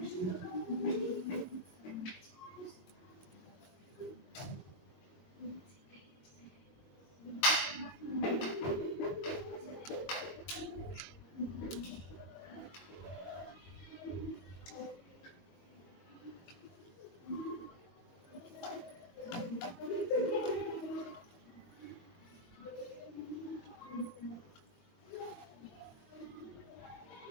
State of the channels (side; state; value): right; late; 22 ms